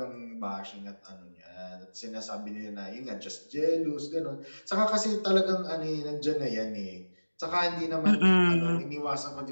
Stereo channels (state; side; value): inverted; both; correlation -1.00